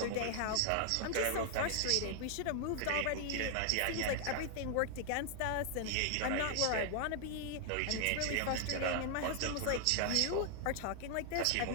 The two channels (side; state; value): both; different; correlation 0.00